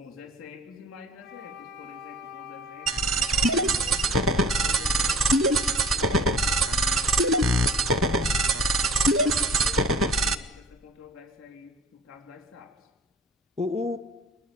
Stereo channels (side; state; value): both; normal; correlation 0.46